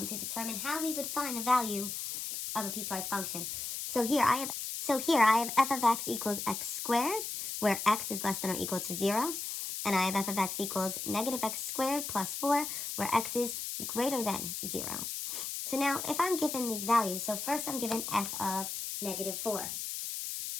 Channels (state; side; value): noise; left; hiss, 5 dB below the sound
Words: determine how we would find the value of a piecewise function. So here I have f of x equals x squared, where x is less than or equal to 0. And I have f of x equals negative x squared plus 4, where x is greater than 0. So now if I'm given these values, so first I'm given f of negative 4.